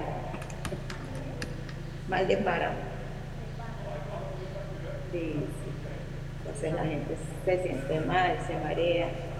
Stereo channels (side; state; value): both; identical; correlation 1.00